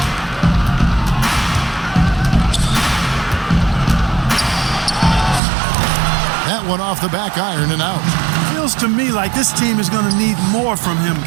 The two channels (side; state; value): left; drops out; at 5.4 s